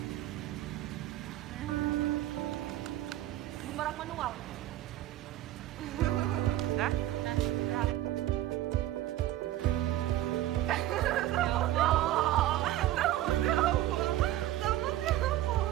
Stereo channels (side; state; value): left; quieter; 14.1 dB